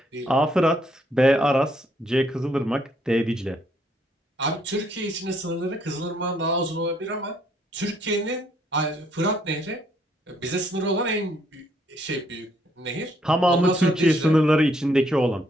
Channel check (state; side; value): normal; both; correlation 0.70